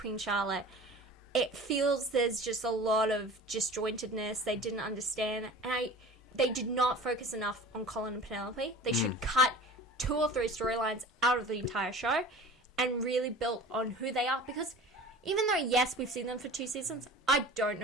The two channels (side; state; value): both; normal; correlation 0.40